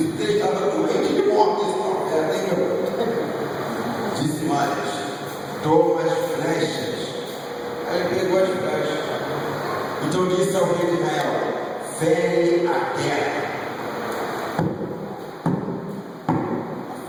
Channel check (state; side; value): identical; both; correlation 1.00